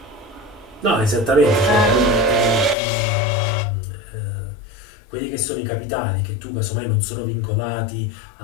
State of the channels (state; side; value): drops out; right; at 2.8 s